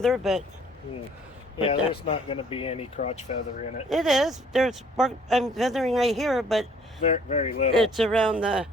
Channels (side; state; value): both; normal; correlation 0.59